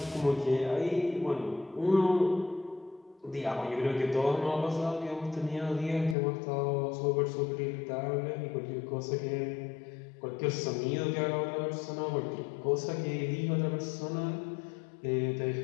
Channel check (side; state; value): right; drops out; at 6.2 s